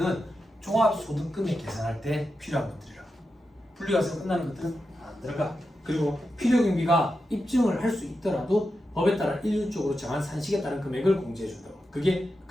종합소득금액 계산할 때 필요한 것들이라. 분리과세로 끝나는 것들은 안 들어가. 그리고 필요경비가 입증을 할 수 있더라도 법에 따라 일률적으로 정한 산식에 따른 금액을 공제해준다고. 그게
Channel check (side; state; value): both; normal; correlation 0.89